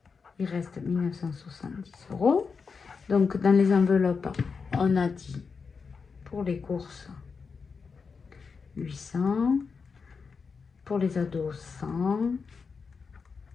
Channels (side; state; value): right; quieter; 5.3 dB